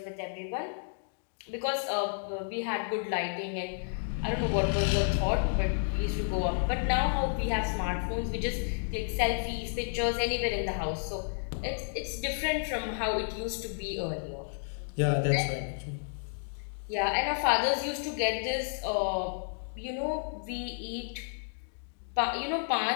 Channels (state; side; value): silent; right; digital silence